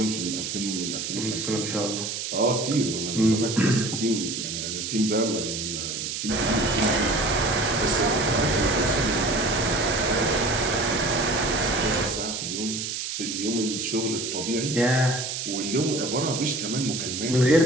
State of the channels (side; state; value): right; noise; hiss, 4 dB below the sound